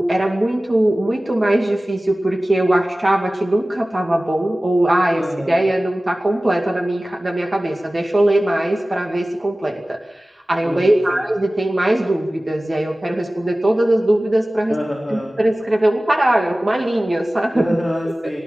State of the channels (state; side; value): normal; both; correlation 0.97